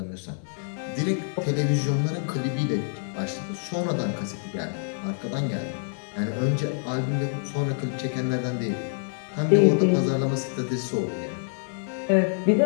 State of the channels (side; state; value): right; silent; 61 dB below the other